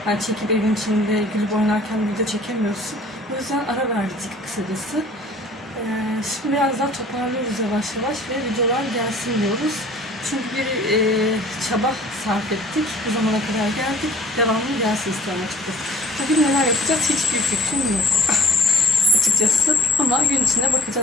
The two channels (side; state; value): both; normal; correlation 0.52